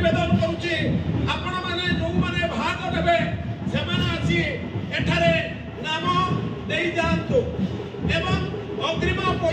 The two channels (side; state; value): both; identical; correlation 1.00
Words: करुच्ची आपण माने जो माने भाग नेबे से आसी एठारे नाम दे जातु एवं अग्रिम